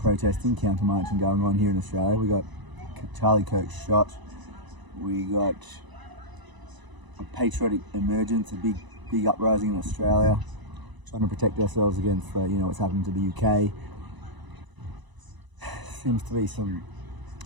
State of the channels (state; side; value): late; left; 1.0 ms